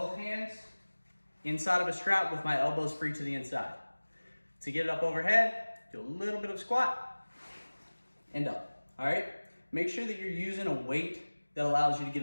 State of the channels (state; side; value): inverted; both; correlation -1.00